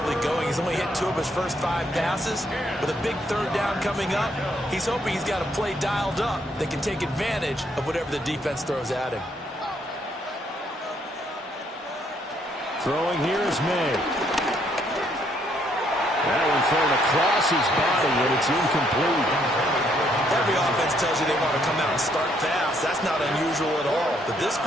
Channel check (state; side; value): normal; both; correlation 0.71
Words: going. He's only hit 2 of his first 5 passes. With a big third down coming up, he's hoping he's got a play dialed up that can take advantage of whatever the defense throws at him. Throwing here is May. That one thrown across his body, and it's incomplete. Every offense tells you they want to come out and start fast. That's not unusual at all. But this